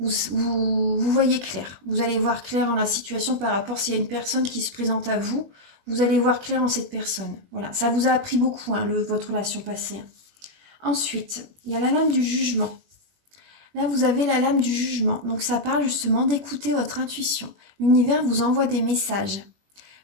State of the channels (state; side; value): late; left; 21 ms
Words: voyez clair. Vous allez voir clair en la situation par rapport s'il y a une personne qui se présente à vous. Vous allez voir clair en cette personne. Voilà, ça vous a appris beaucoup, hein, votre relation passée. Ensuite, il y a la lame du jugement. Là, vous avez la lame du jugement. Donc, ça parle justement d'écouter votre intuition. L'univers vous envoie des messages.